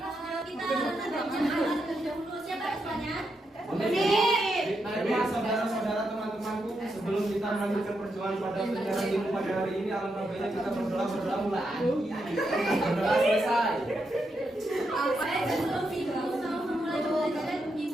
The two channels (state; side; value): normal; both; correlation 0.83